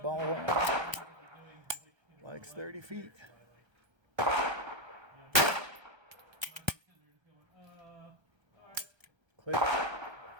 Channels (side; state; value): left; late; 1.3 ms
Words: one. Likes 30 feet. Click.